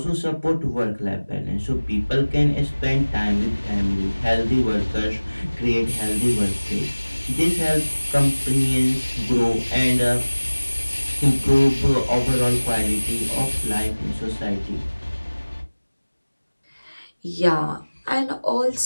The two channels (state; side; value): inverted; both; correlation -1.00